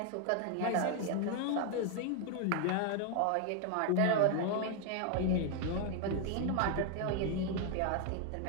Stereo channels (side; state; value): both; different; correlation 0.01